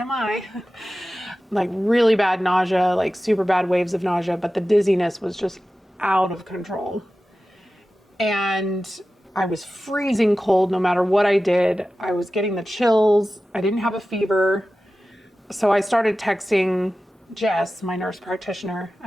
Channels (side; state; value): both; normal; correlation 0.94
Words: like really bad nausea, like super bad waves of nausea, but the dizziness was just out of control. And I was freezing cold no matter what I did. I was getting the chills. I didn't have a fever. So I started texting Jess, my nurse practitioner,